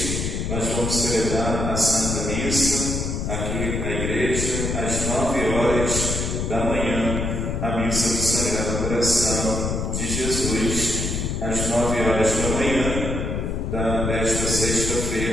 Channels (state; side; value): noise; left; rumble, 2 dB below the sound